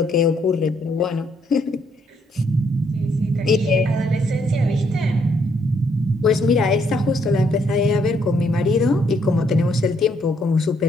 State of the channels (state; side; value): normal; both; correlation 0.71